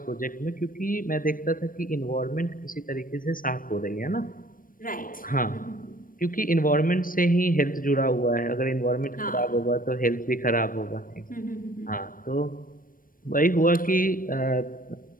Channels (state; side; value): late; right; 0.40 ms